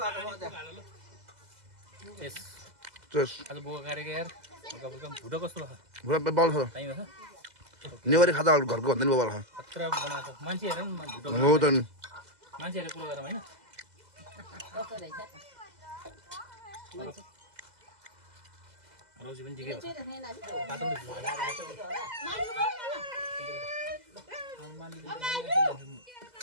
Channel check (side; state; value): left; late; 2.0 ms